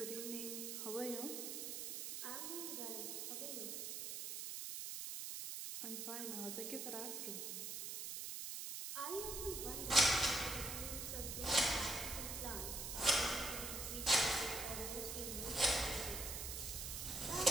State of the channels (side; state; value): right; noise; hiss, 4 dB below the sound